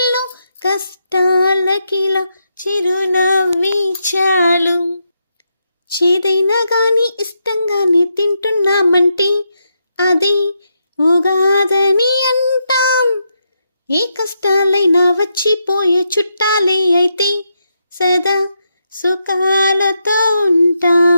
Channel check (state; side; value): inverted; both; correlation -0.82